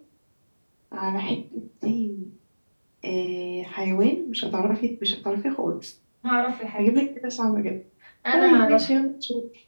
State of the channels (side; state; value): both; inverted; correlation -1.00